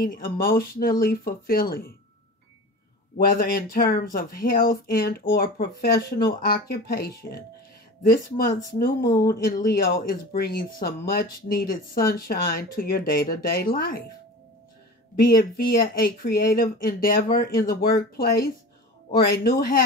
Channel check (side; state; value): both; normal; correlation 0.35